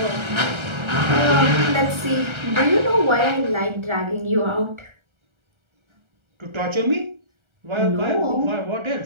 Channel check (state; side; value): late; left; 1.3 ms